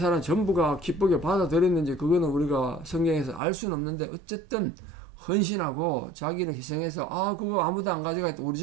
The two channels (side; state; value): left; drops out; at 3.4 s